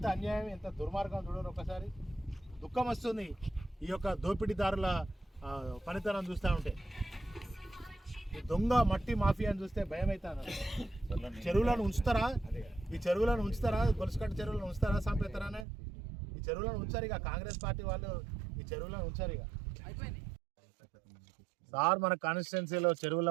అన్యాయం, ఎంత దుర్మార్గం చూడరు. ఒకసారి దుఃఖం వస్తుంది ఈ యొక్క దోపిడీదారుల పనితనం చూస్తూ ఉంటే. ఈ దొంగ మట్టి మాఫియాని చూస్తే భయం అవుతాను. చెరువులను ఉంచుతారా? ఈ చెరువులను ఉంచుతారా? గొలుసుకట్టు చెరువులను ఉంచుతారా? సంపేస్తారానే ఈ చెరువులను ఉంచారు. ఇక కాంగ్రెస్ పార్టీ వాళ్ళు ఈ చెరువులను ఉంచారు. ఇక సార్, మన కాన్స్టిట్యున్సీలో చెరువుల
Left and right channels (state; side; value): drops out; left; at 15.7 s